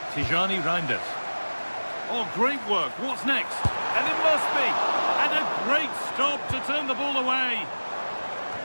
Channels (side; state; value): both; inverted; correlation -1.00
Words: Tijani Reinders. Oh, great work. What's next? And it must be. And a great stop to turn the ball away.